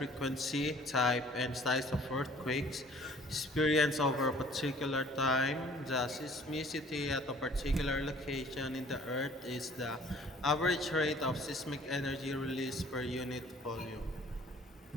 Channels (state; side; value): normal; both; correlation 0.53